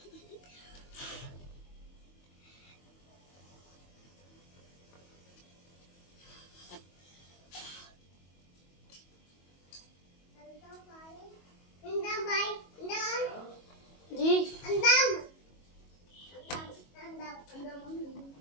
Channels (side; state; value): right; late; 22 ms